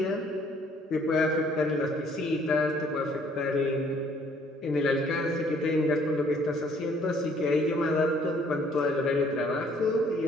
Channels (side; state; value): both; normal; correlation 0.61